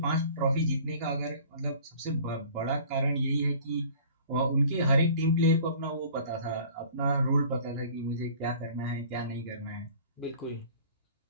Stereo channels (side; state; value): both; inverted; correlation -0.47